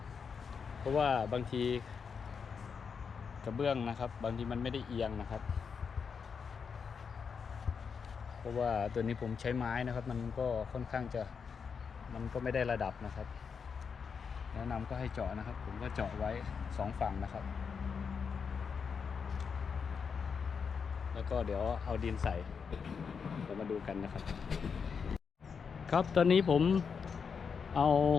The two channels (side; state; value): right; quieter; 6.1 dB